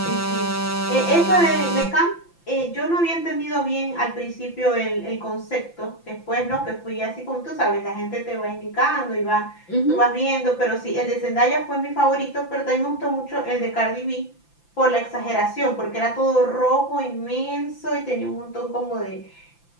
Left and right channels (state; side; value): late; right; 5.9 ms